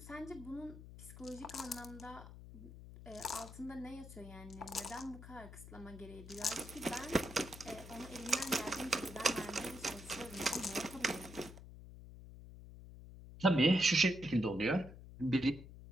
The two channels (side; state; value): left; noise; hum, 14 dB below the sound